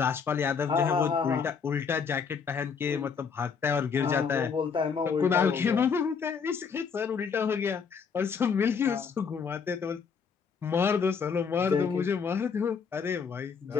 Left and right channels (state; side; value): quieter; right; 6.1 dB